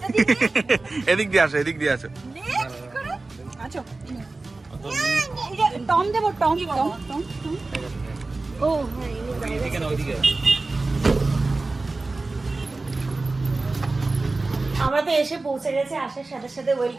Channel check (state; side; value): quieter; left; 3.4 dB